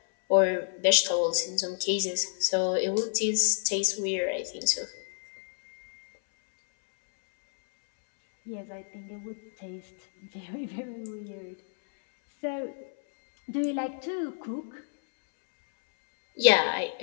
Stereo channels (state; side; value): silent; right; 59 dB below the other